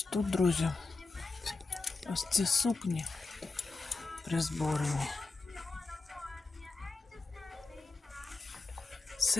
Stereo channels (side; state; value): right; quieter; 3.9 dB